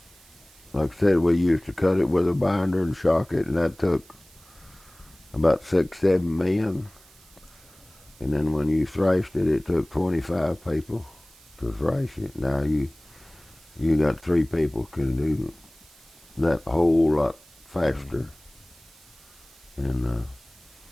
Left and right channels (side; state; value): right; noise; hiss, 26 dB below the sound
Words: like I said, we used to cut it with a binder and shock it, and that took about 6, 7 men. And then when you thrashed it, it took 25 people to thrash it. Now you got 3 people can do that whole lot faster. And